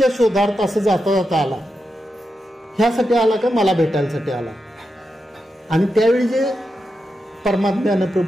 शोधार्थ असं जाता जाता आला, ह्यासाठी आला का मला भेटायसाठी आला? आणि त्यावेळी जे परमात्म्यानं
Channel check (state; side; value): normal; both; correlation 0.87